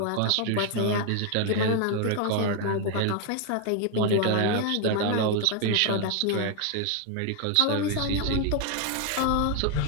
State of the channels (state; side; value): different; both; correlation 0.00